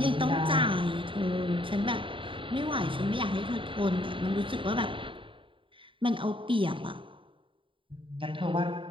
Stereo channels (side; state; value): left; late; 0.25 ms